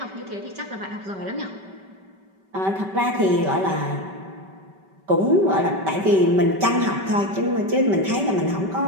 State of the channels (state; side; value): late; left; 5.2 ms